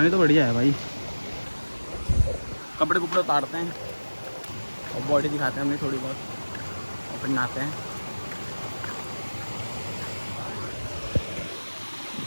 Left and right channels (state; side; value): inverted; both; correlation -1.00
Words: तो बढ़िया है भाई। कपड़े कुपड़े उतारते हैं और बॉडी दिखाते हैं अपनी थोड़ी बहुत, और फिर नहाते हैं।